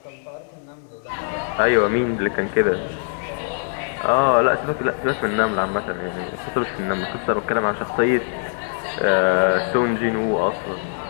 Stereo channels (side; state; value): right; silent; digital silence